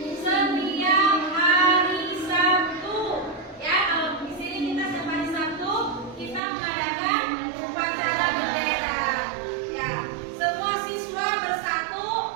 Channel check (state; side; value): drops out; left; at 6.4 s